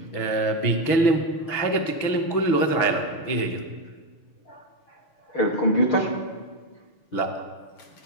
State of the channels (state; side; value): late; right; 6.1 ms